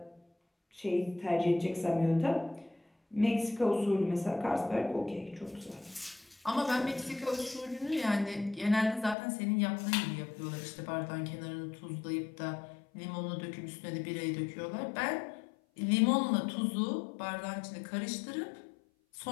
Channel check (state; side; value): drops out; right; at 9.2 s